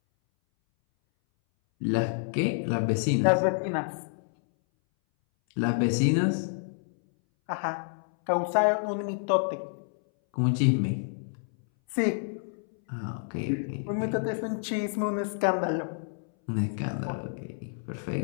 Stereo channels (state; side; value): silent; right; 59 dB below the other